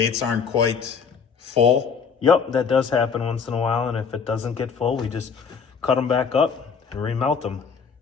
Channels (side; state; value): right; quieter; 6.1 dB